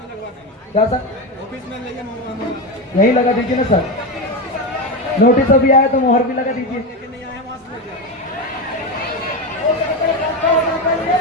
क्या सर? यही लगा दीजिए ना सर। नोटिस अभी आया तो मोहर भी लगा दीजिए।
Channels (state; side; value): normal; both; correlation 0.15